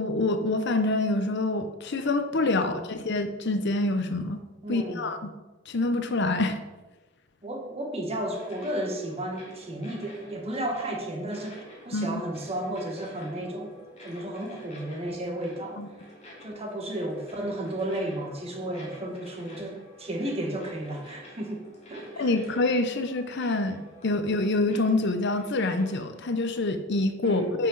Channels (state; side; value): normal; both; correlation 0.31